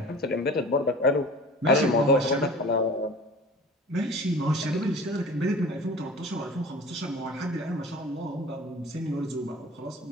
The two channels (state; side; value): normal; both; correlation 0.41